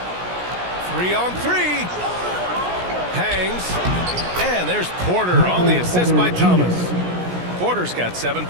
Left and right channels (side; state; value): left; late; 17 ms